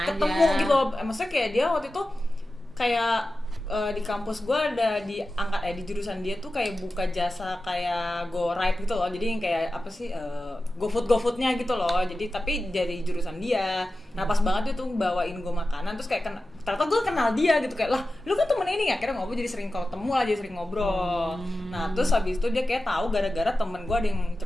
gitu loh. Maksudnya kayak dia waktu itu kayak di kampus gue ada di jurusan dia tuh kayak buka jasa kayak go ride gitu loh. Jadi yang kayak apa sih GoFoodnya gitu loh. Jadi tapi dari jurusan dia. Nah pas banget dia tuh bawain gue makanan, terus kayak ternyata gue kenal dia gitu, kayak lah lu kan temen ini ya. Akhirnya ngobrol, jadi sering ketemu lah, jadi sering ngobrol. Nah terus habis itu dia kayak tahu gara-gara temen gue ada yang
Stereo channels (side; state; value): both; normal; correlation 0.94